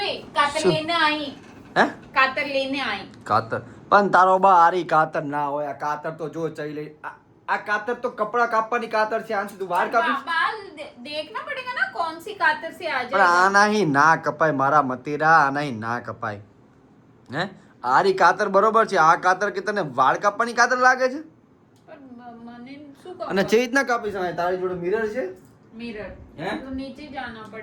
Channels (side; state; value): both; identical; correlation 1.00